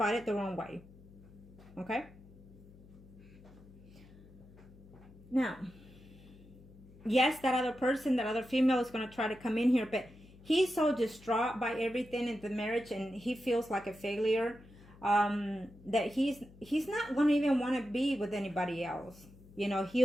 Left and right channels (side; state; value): left; noise; hum, 22 dB below the sound